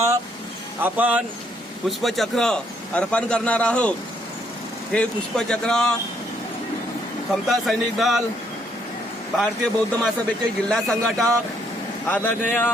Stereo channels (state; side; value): normal; both; correlation 0.70